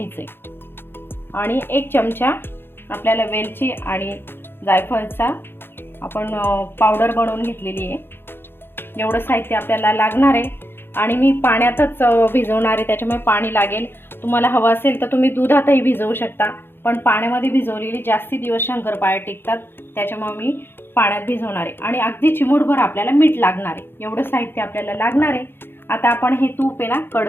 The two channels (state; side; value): late; right; 0.10 ms